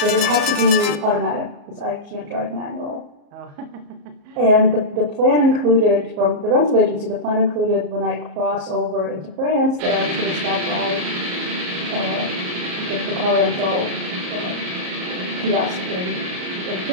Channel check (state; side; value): late; left; 34 ms